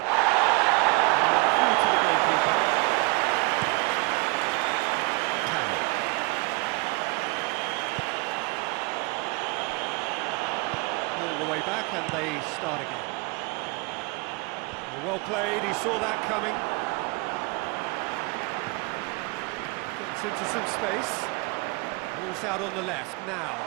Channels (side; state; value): left; quieter; 26.6 dB